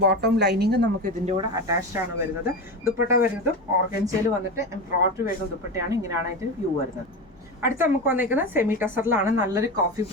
ബോട്ടം ലൈനിങ് നമുക്ക് ഇതിൻ്റെ കൂടെ അറ്റാച്ച്ഡ് ആണ് വരുന്നത്. ദുപ്പട്ട വരുന്നതും ഓർഗൻസയിൽ വന്നിട്ട് എംബ്രോയിഡറി വരുന്ന ദുപ്പട്ടയാണ്. ഇങ്ങനെയാണ് അതിൻ്റെ വ്യൂ വരുന്നത്. അടുത്ത നമുക്ക് വന്നേക്കുന്നത് സെമി ടസറിലാണ്. നല്ലൊരു കോഫി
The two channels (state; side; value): normal; both; correlation 0.22